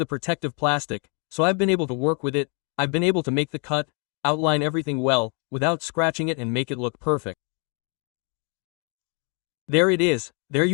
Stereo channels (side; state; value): right; quieter; 36.8 dB